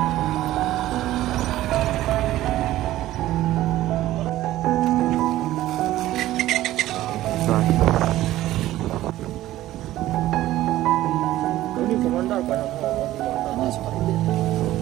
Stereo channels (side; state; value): left; quieter; 15.0 dB